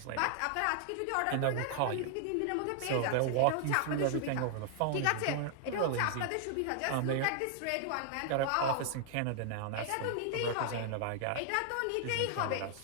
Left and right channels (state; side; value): different; both; correlation 0.00